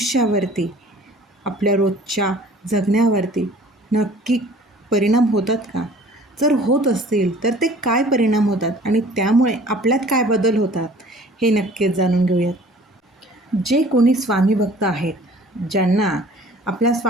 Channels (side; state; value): both; normal; correlation 0.50